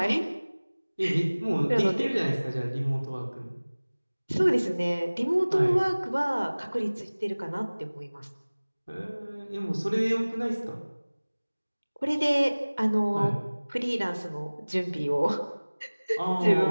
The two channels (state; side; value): inverted; both; correlation -1.00